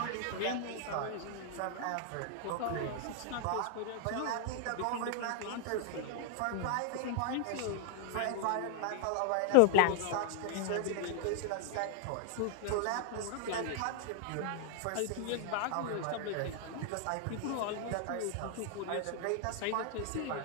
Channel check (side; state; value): both; different; correlation 0.00